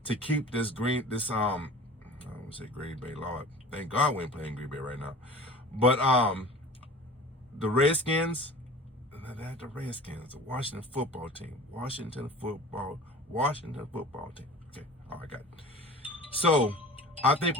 to keep this I don't want to say Green Bay, Lord. Thank God we ain't playing Green Bay right now. But the Redskins, the Washington football team. Washington football team. Okay, all right, got it. So I think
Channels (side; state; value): both; normal; correlation 0.41